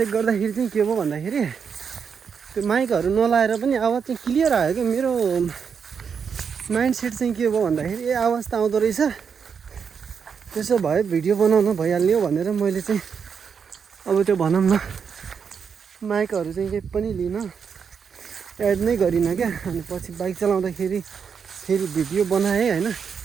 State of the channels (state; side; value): quieter; left; 6.6 dB